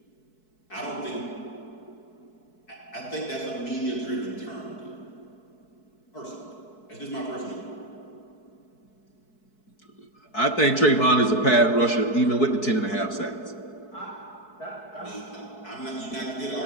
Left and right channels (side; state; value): right; late; 4.6 ms